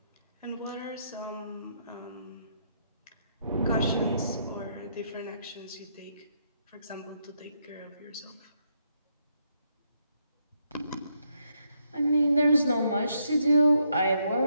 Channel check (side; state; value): both; inverted; correlation -0.76